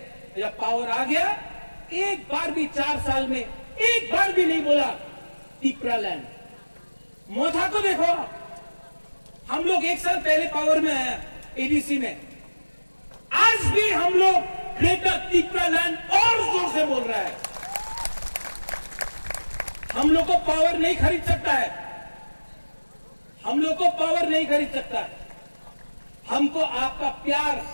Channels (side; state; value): both; inverted; correlation -1.00